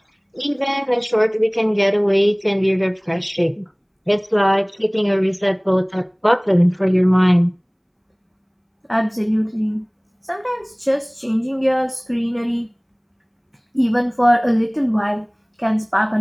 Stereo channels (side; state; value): both; identical; correlation 1.00